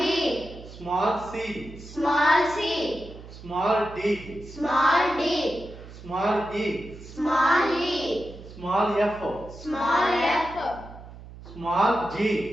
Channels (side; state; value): right; noise; hum, 16 dB below the sound